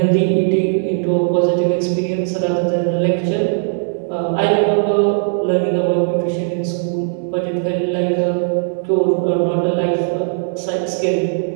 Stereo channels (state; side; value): silent; left; digital silence